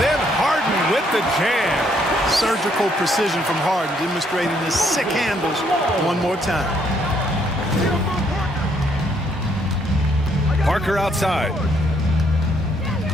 Harden with the jam. Surgical precision from Harden, demonstrating his sick handles one more time. Parker outside.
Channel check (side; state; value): both; normal; correlation 0.70